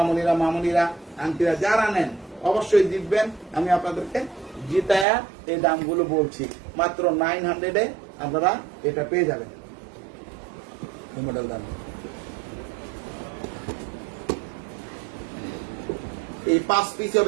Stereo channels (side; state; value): left; drops out; at 5.1 s